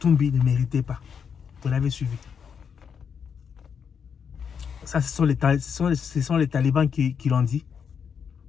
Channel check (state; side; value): quieter; right; 6.9 dB